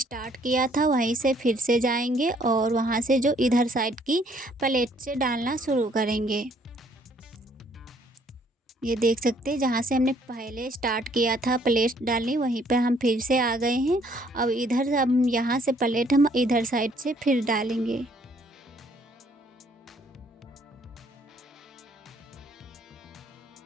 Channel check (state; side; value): normal; both; correlation 0.64